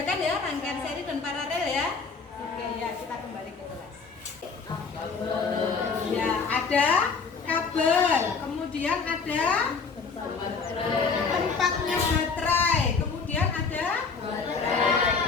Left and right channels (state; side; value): quieter; right; 5.0 dB